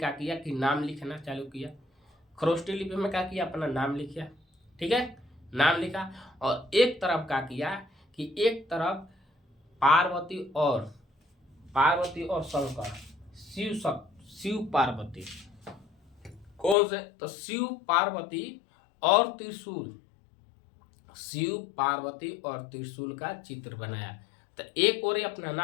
किया कि नाम लिखना चालू किया। खरोष्टी लिपि में क्या किया, अपना नाम लिखा। ठीक है, नाम लिखा। और एक तरफ क्या किया कि एक तरफ पार्वती और शंकर, शिव पार्वती, कौन से, तो शिव पार्वती और त्रिशूल का चित्र बनाया। तो एक ओर अपना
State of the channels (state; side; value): drops out; right; at 16.8 s